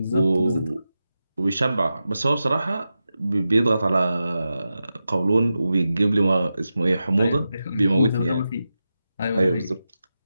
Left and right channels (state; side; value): inverted; both; correlation -0.91